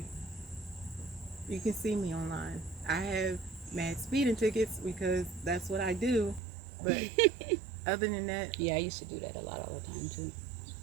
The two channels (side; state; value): left; drops out; at 6.4 s